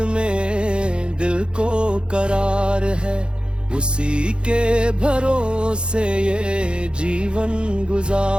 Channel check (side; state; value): left; late; 0.053 ms